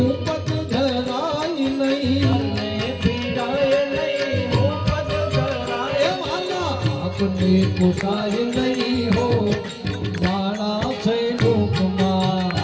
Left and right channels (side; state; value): both; identical; correlation 1.00